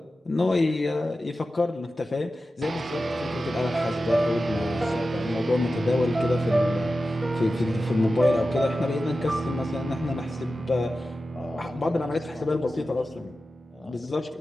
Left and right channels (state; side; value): normal; both; correlation 0.93